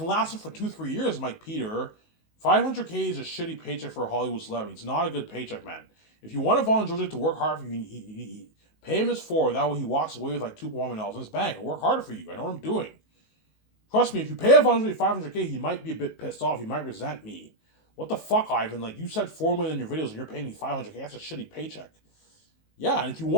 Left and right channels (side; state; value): right; late; 19 ms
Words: last him for 2-3 years. I'm like, Peter, $500K is a shitty paycheck for a Hollywood celebrity. It's not a good paycheck, man. If you want Vaughn Georgia to work hard for you, pay him his $4. That way he walks away with like $2.1 million in his bank. Work harder for you. I know what I'm doing. Trust me, if you pay Vaughn Georgia $500K, he might be a bit pissed off. He might resent me. What the fuck, Ivan? Like, you said $4 million in your videos and you're paying me $500K. That's a shitty paycheck. Yeah, and if you